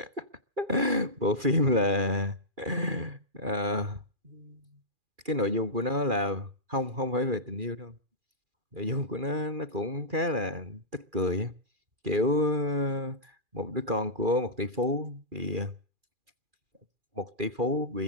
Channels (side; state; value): left; late; 2.4 ms